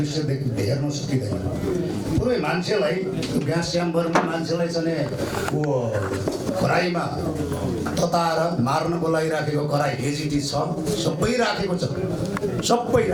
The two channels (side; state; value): both; identical; correlation 1.00